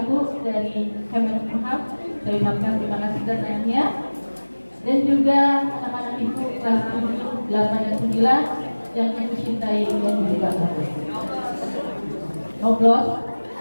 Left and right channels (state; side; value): inverted; both; correlation -1.00